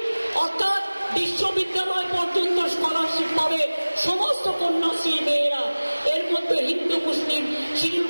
অর্থাৎ বিশ্ববিদ্যালয় পর্যন্ত স্কলারশিপ পাবে সমস্ত কন্যাশ্রী মেয়েরা। এর মধ্যে হিন্দু, মুসলিম, শিডিউল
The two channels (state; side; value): inverted; both; correlation -1.00